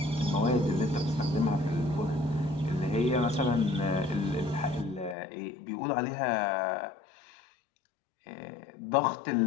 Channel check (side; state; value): right; drops out; at 5.2 s